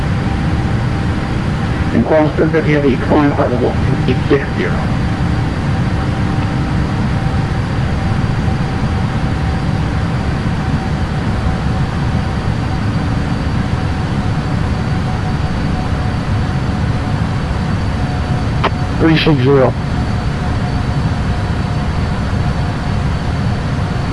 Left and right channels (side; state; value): both; identical; correlation 1.00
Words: And Qantas 750 Heavy, climb part level 860.